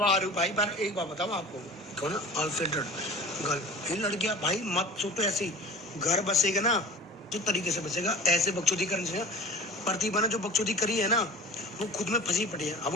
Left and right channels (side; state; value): both; normal; correlation 0.39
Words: हूँ भाई। पर एक बात बताऊँ आपको, कहो ना अनफिल्टर्ड गर्ल, इन लड़कियां भाई मत सोचो ऐसी। घर बसेगा ना जो तरीके से बचेगा, ऐसे बकचोदी करने से। प्रतिभा ने जो बकचोदी करी है ना, वो खुद में फंसी पड़ी है। अब